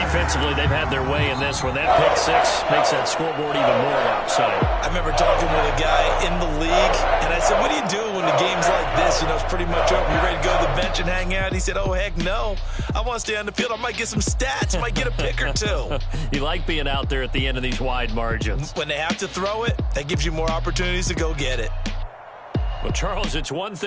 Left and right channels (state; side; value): identical; both; correlation 1.00